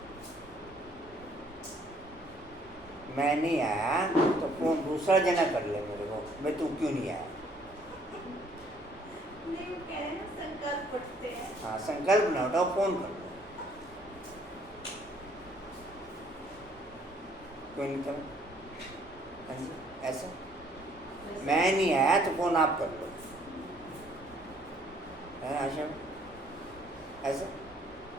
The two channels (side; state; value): both; normal; correlation 0.62